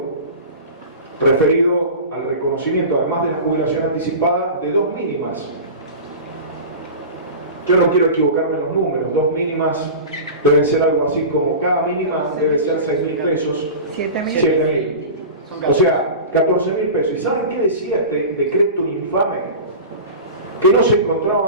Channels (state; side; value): inverted; both; correlation -0.32